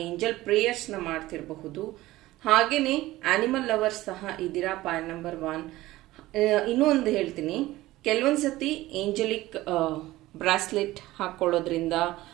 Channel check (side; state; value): left; quieter; 17.3 dB